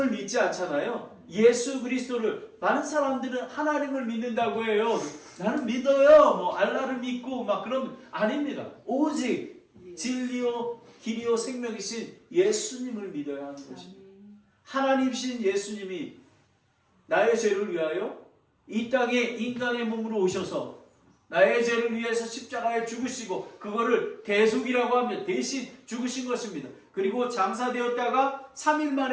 믿지 않잖아요. 예수 그리스도를. 많은 사람들은 하나님을 믿는다고 해요. 나는 믿어요. 뭐 알라를 믿고 막 그러면 아닙니다. 오직 진리요 길이요 생명이신 예수님을 믿어야 하는 것입니다. 하나님이신 예수님이 나의 죄를 위하여 이 땅에 인간의 몸으로 오셔서 나의 죄를 위해서 십자가에 죽으시고 그거를 대속이라고 하면 대신 죽으신 것입니다. 그리고 장사되었다가 3일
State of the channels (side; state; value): both; identical; correlation 1.00